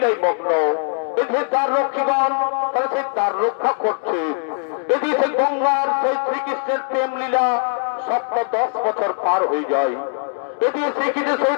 মগ্ন। এই যে দ্বার রক্ষীগণ তাই সেই দ্বার রক্ষা করছে। যদি সেই গঙ্গার সেই শ্রীকৃষ্ণের প্রেম লীলা 10 বছর পার হয়ে যায়, যদি শ্রীকৃষ্ণের সেই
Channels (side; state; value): right; silent; 65 dB below the other